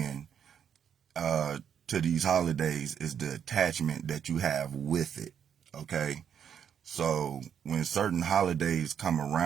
to these holidays, is the attachment that you have with it, okay? So when certain holidays come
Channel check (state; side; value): quieter; left; 8.2 dB